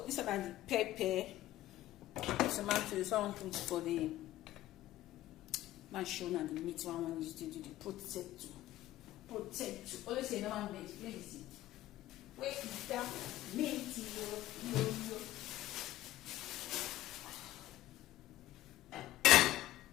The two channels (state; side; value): quieter; right; 15.0 dB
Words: this is about the pepper. Tomato. Someone put for the mansion and the meat. One used to do the potato. Always say no one made. Please. Where is that meat? Yo.